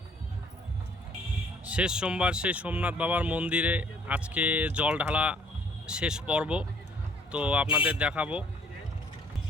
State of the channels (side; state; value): both; normal; correlation 0.59